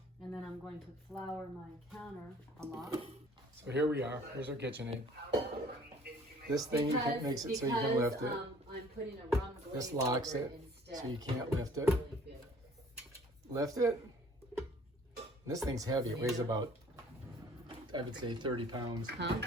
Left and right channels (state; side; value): normal; both; correlation 0.54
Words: And then I'm going to flour my counter a lot. So here we are. Here's our KitchenAid. This thing makes it so you can lift it. I'm putting a rum glaze This locks over it instead. so you can't lift it. Really good. Lift it. This thing's heavy. It weighs about, I would say, 30 pounds. Huh?